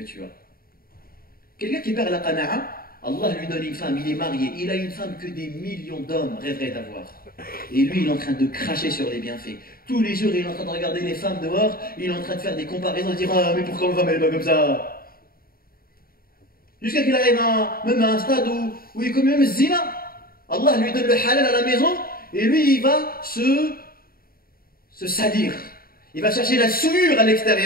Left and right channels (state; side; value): late; right; 0.43 ms